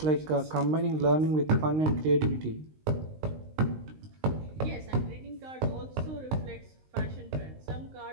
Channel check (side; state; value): left; late; 19 ms